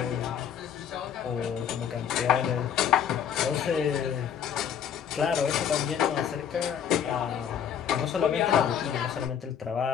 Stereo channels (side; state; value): right; quieter; 8.5 dB